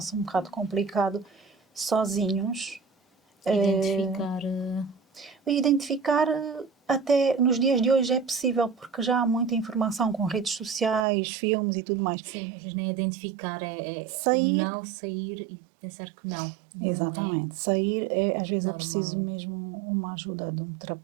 um bocado complicado sozinhos. Identificar até nos dias de hoje é possível, porque já há muita informação com redes sociais, filmes e tudo mais. Sim, às vezes nem identificar, não sair e pensar que não. Exatamente. Sair às vezes normal. É preciso mesmo uma ajuda de um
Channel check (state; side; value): drops out; left; at 11.1 s